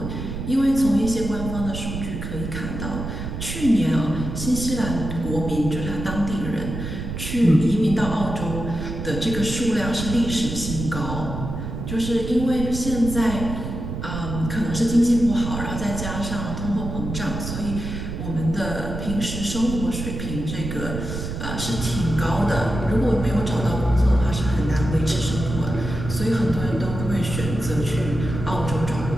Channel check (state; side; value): noise; right; rumble, 6 dB below the sound